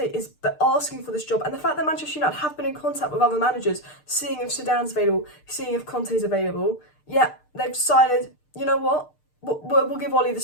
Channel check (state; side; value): late; right; 6.6 ms